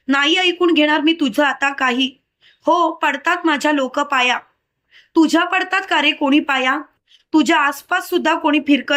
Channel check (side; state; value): both; identical; correlation 1.00